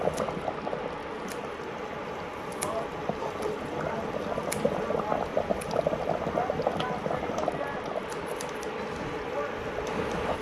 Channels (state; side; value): identical; both; correlation 1.00